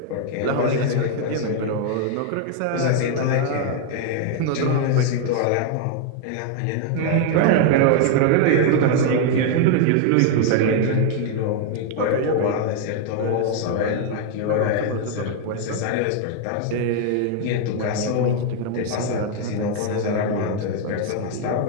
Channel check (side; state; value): both; different; correlation 0.00